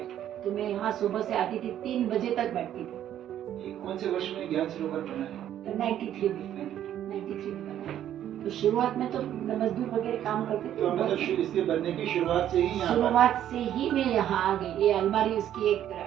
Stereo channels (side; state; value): left; quieter; 11.1 dB